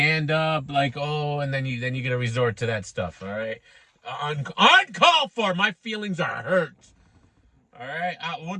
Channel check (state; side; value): identical; both; correlation 1.00